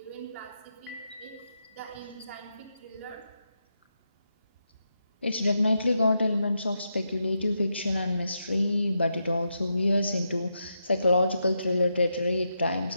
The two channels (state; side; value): inverted; both; correlation -0.84